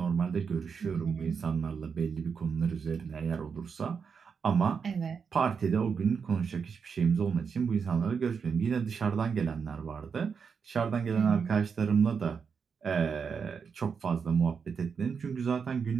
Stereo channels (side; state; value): left; quieter; 6.1 dB